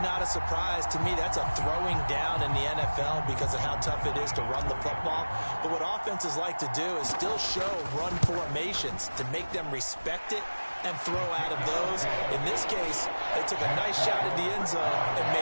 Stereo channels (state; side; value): inverted; both; correlation -1.00